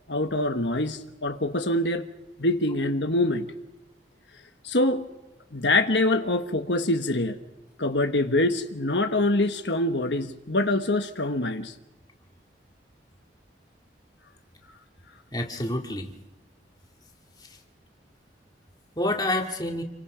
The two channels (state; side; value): normal; both; correlation 0.22